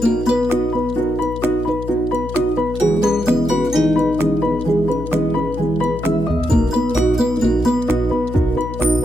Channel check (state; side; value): noise; left; hum, 9 dB below the sound